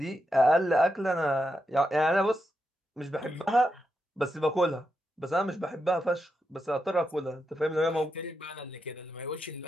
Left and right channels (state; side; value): normal; both; correlation 0.85